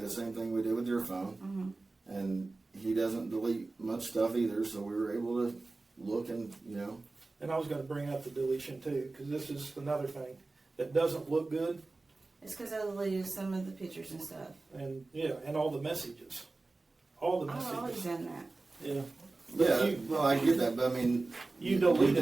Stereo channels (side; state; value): left; quieter; 3.4 dB